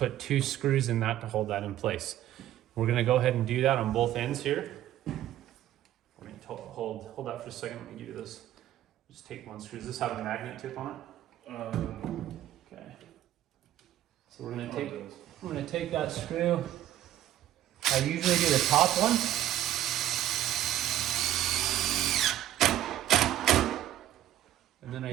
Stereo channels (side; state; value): left; quieter; 12.8 dB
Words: 2 screws in that to hold that in place. We're gonna go ahead and do that on both ends here. We're gonna hold that for a second. Let me give you this. Just take 1 screw. Does this have a magnet tip on it? Okay. So we're gonna take that screw. I usually do the top one. And then I